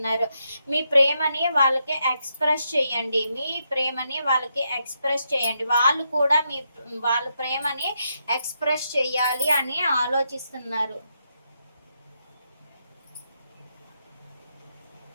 మీ ప్రేమని వాళ్ళకి ఎక్స్ప్రెస్ చేయండి. వాళ్ళు కూడా వాళ్ళ ప్రేమని ఎక్స్ప్రెస్ చేయాలి అని ఆలోచిస్తున్నారు.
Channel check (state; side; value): inverted; both; correlation -0.81